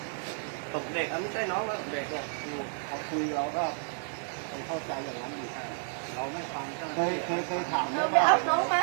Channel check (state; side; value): silent; left; 57 dB below the other